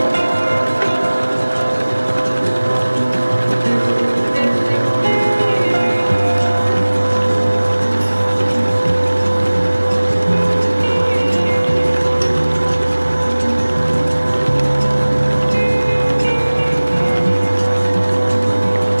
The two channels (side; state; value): both; inverted; correlation -1.00